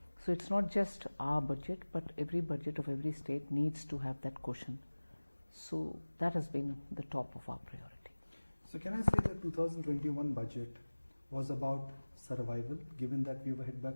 So it's not just our budget, but every budget of every state needs to have that cushion. So that has been the top of our priority. So can I say that 2021 budget was about survival, given that we were hit by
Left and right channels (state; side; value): inverted; both; correlation -1.00